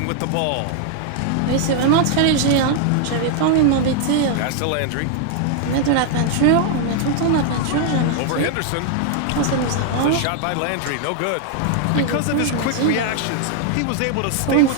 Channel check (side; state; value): both; different; correlation 0.00